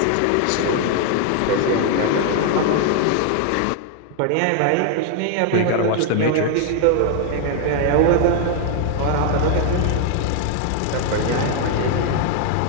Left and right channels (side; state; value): both; different; correlation 0.00